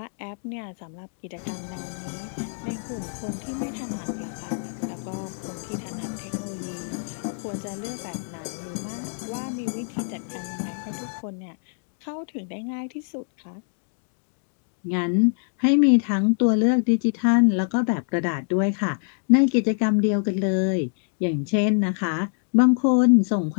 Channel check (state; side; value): silent; right; 62 dB below the other